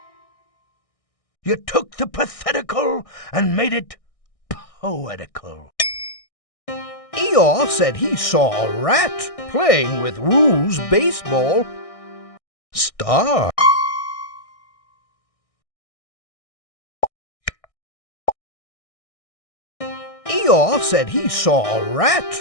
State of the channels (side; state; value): right; late; 1.6 ms